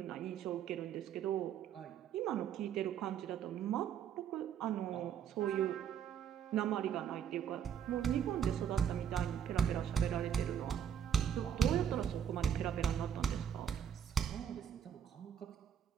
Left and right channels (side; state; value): left; quieter; 8.7 dB